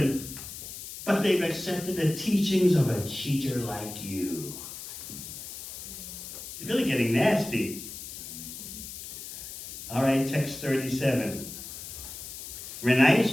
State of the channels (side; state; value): left; noise; hiss, 10 dB below the sound